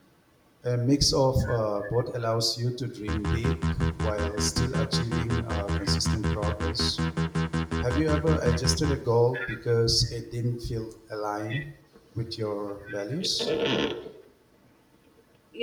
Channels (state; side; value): identical; both; correlation 1.00